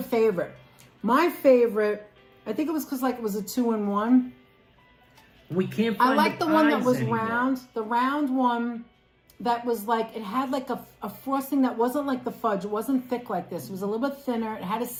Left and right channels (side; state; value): both; identical; correlation 1.00